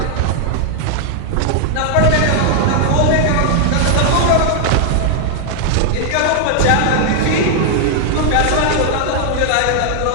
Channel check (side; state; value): both; different; correlation 0.00